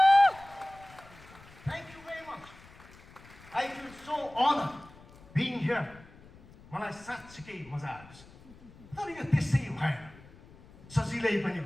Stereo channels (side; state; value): left; noise; rumble, 22 dB below the sound